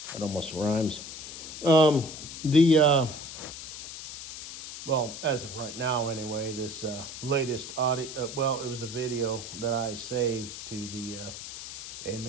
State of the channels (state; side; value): noise; left; hiss, 10 dB below the sound